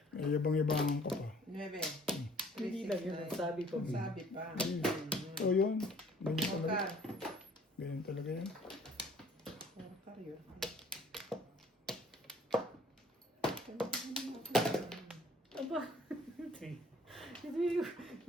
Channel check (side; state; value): both; normal; correlation 0.55